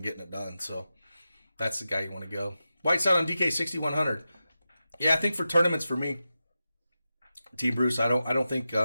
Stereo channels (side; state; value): both; inverted; correlation -0.91